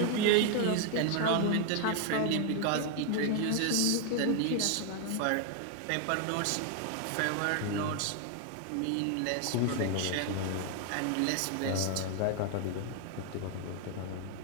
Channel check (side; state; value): both; different; correlation 0.00